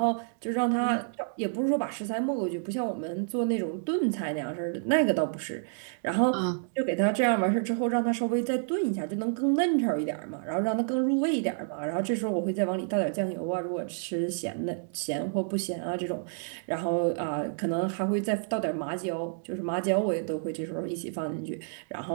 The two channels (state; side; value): silent; left; digital silence